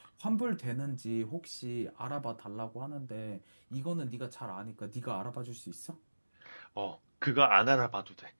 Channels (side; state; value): both; inverted; correlation -1.00